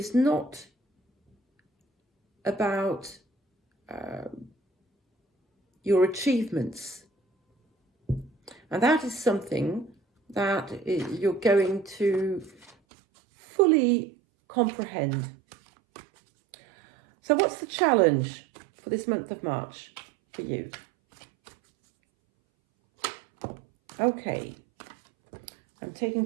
not about your achievements. And that is something that you're going to fully comprehend. So what's the challenge for this month of March for you? Okay, I'm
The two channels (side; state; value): left; drops out; at 12.8 s